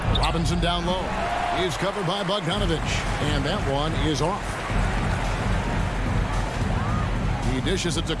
Robinson down low. Is covered by Bogdanovich. And that one is off. He dishes it to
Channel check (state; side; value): identical; both; correlation 1.00